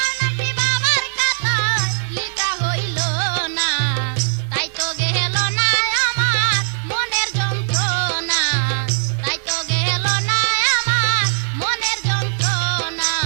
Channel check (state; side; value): silent; left; digital silence